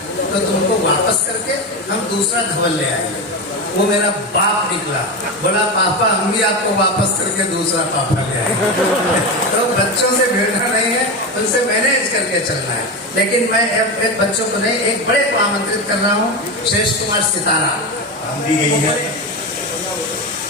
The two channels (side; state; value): both; normal; correlation 0.18